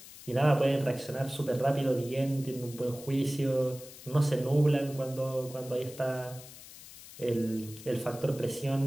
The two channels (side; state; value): left; noise; hiss, 17 dB below the sound